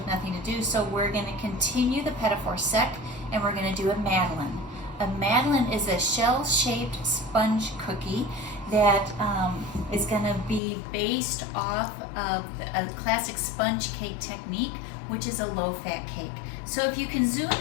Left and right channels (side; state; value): right; drops out; at 10.6 s